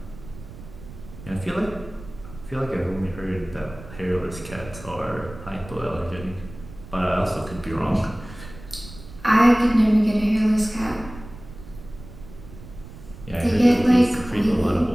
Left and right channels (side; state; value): right; noise; rumble, 16 dB below the sound